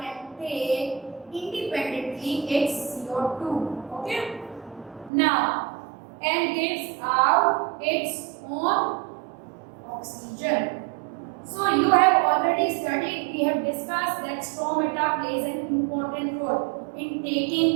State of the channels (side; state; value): left; drops out; at 5.1 s